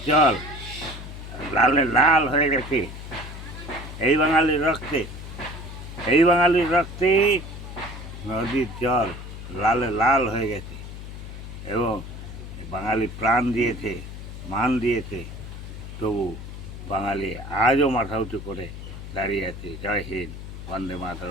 জল লাল হয়ে গেছে। এই বাঙালির রক্তে নদীর জল লাল হয়ে গেছে এবং বাঙালি প্রাণ দিয়েছে, মান দিয়েছে। তবু বাঙালি আজও মাথা উঁচু করে দাঁড়িয়ে আছে। জয় হিন্দ, বন্দে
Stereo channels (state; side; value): noise; left; hum, 11 dB below the sound